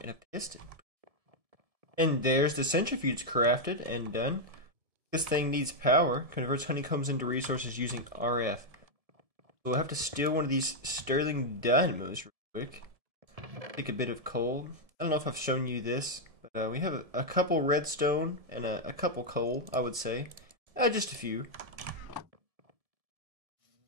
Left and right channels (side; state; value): left; late; 1.7 ms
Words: and a piston. And there's the centrifuge crafted and done. This thing needs power, converts honeycombs into resources using RF. So we'll have to steal one of these Sterling dynamos real quick. Take a bit of coal. I don't know if I've shown you this, but we have a couple redstone and a couple coal, I would say. Just a few.